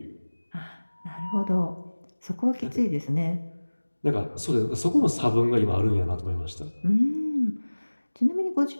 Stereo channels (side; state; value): both; inverted; correlation -1.00